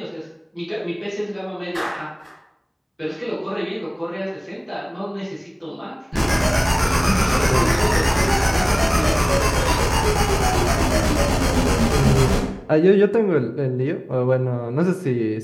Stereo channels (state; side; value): identical; both; correlation 1.00